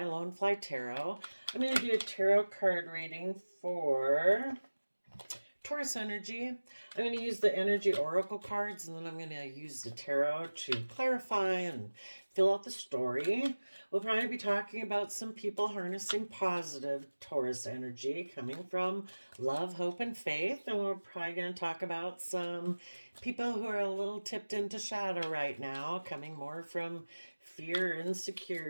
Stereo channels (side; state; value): both; inverted; correlation -1.00